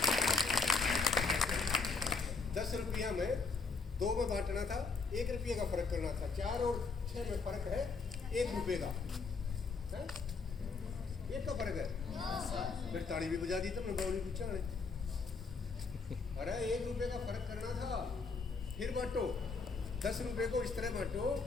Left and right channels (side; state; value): right; quieter; 4.5 dB